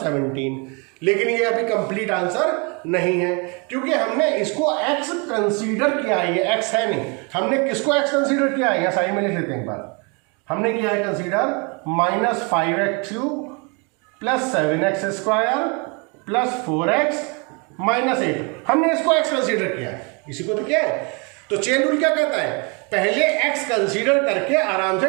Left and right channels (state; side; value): quieter; left; 32.1 dB